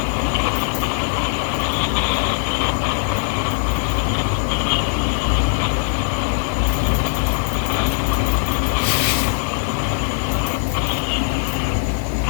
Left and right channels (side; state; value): right; silent; digital silence